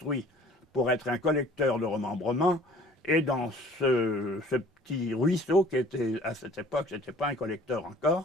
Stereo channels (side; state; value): both; normal; correlation 0.51